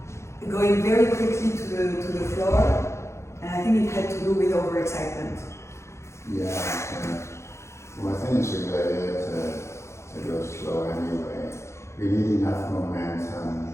going very quickly to the floor, and I think it had to do with overexcitement. Well, I think it's a good idea to go slow anyway. We need enough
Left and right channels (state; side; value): late; right; 0.13 ms